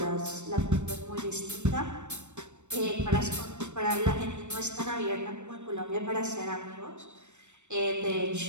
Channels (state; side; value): late; left; 0.84 ms